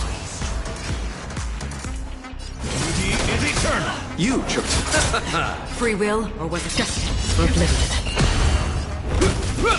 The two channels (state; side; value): identical; both; correlation 1.00